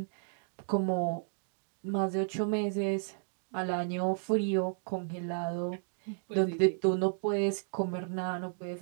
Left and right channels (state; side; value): silent; left; digital silence